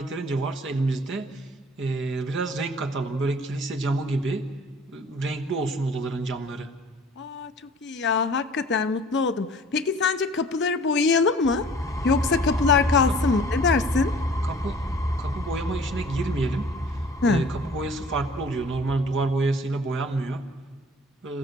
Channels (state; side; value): normal; both; correlation 0.49